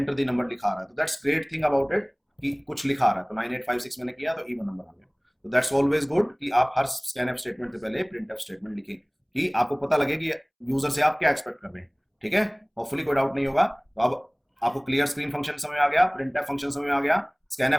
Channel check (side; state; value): both; identical; correlation 1.00